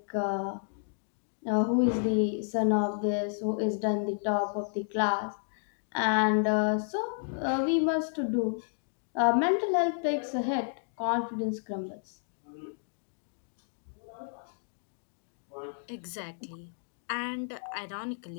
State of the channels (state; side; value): silent; right; digital silence